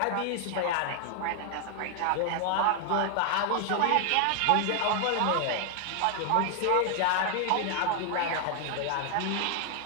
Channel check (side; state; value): both; different; correlation 0.00